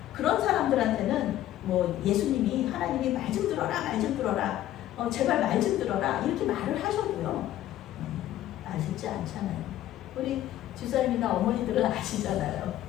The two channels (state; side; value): quieter; right; 13.3 dB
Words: 그런 사람들한테는 뭐 예수님이 하나님이 말 좀 들어라, 말 좀 들어라, 제발 말 좀 들어라 이렇게 말을 하셔도요 아시지 않잖아요. 우리 주사님이나 어머니들은 아시잖아요.